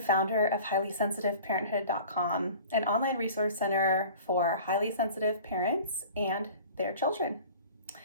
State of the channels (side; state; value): both; inverted; correlation -0.43